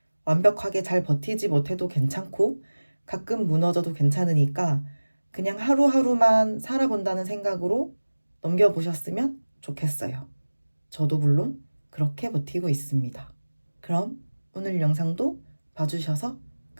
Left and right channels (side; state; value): both; inverted; correlation -1.00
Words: 완벽하게 잘 버티지 못해도 괜찮고 가끔 무너져도 괜찮으니까 그냥 하루하루만 살아본다는 생각으로 넘겨보셨으면 좋겠어요. 저도 물론 그렇게 버티고 있습니다. 그럼 오늘 영상도 봐주셔서